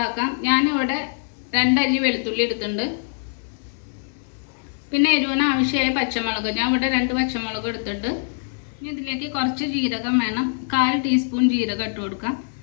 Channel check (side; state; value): right; silent; 63 dB below the other